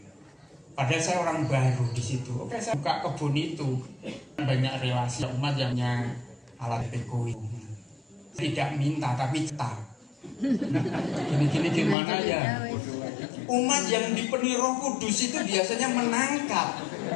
Padahal saya orang baru di situ. Oke, saya buka kebun itu, banyak relasi umat yang punya alat ekonomi. Tidak minta tapi cetak. Gini gimana ya? Umat yang dipenuhi Roh Kudus itu biasanya menangkap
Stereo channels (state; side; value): drops out; right; at 12.0 s